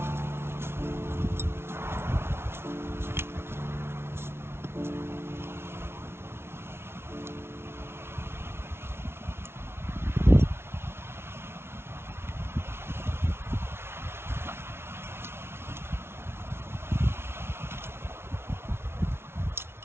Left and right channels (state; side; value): late; left; 0.12 ms